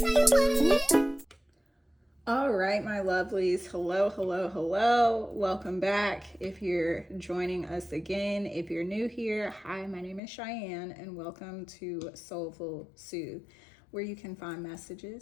right, my lovelies. Hello, hello, hello. Welcome back. If you're joining us again, if you're new here, hi, my name is Cheyenne, and welcome to Soulful Soothe, where you can find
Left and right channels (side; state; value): right; drops out; at 10.2 s